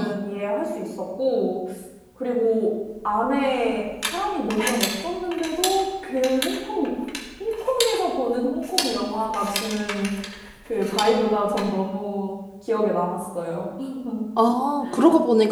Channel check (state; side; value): identical; both; correlation 1.00